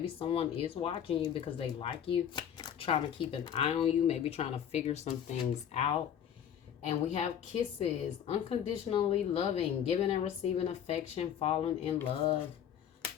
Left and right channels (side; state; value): right; quieter; 9.2 dB